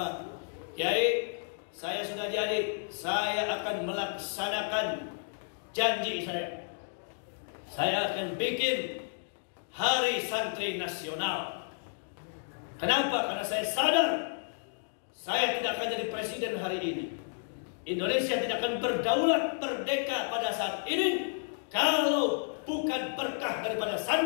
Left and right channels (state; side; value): silent; right; digital silence